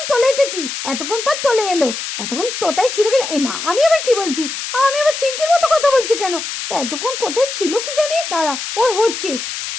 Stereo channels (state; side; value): noise; left; hiss, 6 dB below the sound